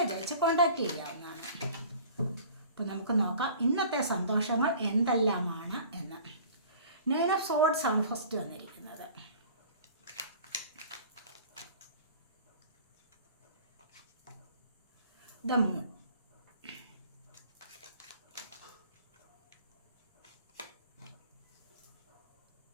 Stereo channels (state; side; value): inverted; both; correlation -0.46